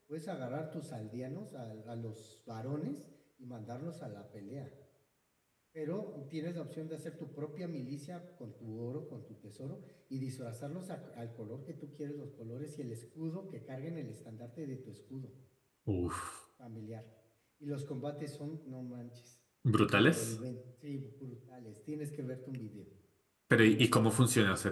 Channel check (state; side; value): identical; both; correlation 1.00